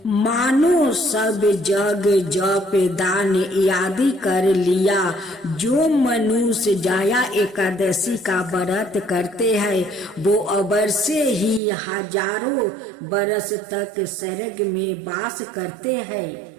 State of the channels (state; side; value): drops out; left; at 11.6 s